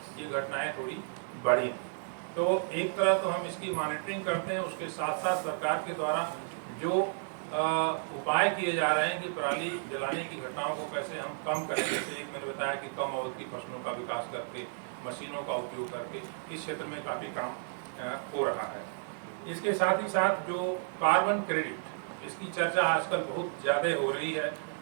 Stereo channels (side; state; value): left; silent; digital silence